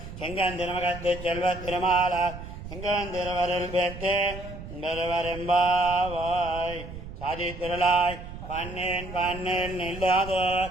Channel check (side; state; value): right; noise; rumble, 11 dB below the sound